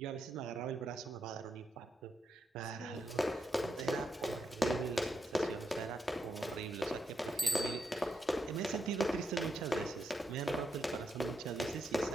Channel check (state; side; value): normal; both; correlation 0.82